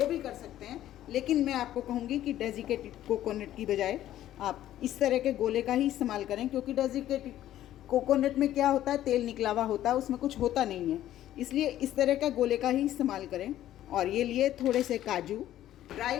भी कर सकते हैं, लेकिन मैं आपको कहूँगी कि डेजिकेटेड कोकोनट की बजाय आप इस तरह के गोले का ही इस्तेमाल करें, क्योंकि डेजिकेटेड कोकोनट में क्या होता है, तेल निकला हुआ होता है, उसमें कुछ होता नहीं है, इसलिए इस तरह का गोले का ही इस्तेमाल करें। और ये लिए थोड़े से काजू। ड्राई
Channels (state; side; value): quieter; right; 12.8 dB